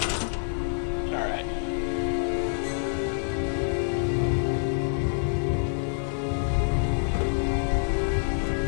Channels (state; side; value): silent; right; 60 dB below the other